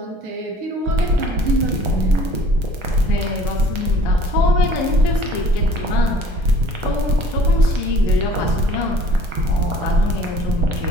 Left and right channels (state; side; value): late; left; 1.4 ms